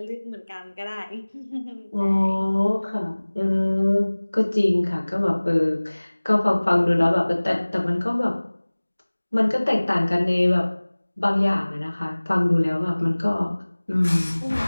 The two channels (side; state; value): both; inverted; correlation -1.00